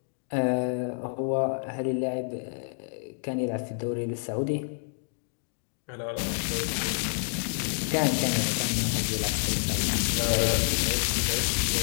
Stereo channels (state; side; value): silent; right; digital silence